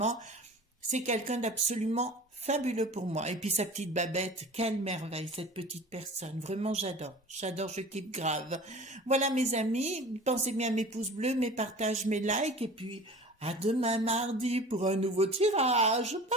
C'est quelqu'un d'absolument fabuleux pour moi. Et puis sa petite Babette, quelle merveille, cette petite personne. Vraiment, j'adore, je kiffe grave. Voilà, mes amis, pensez bien à mes pouces bleus, mes partages, mes likes, et puis à demain mardi pour un nouveau tirage. Bye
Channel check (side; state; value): both; normal; correlation 0.40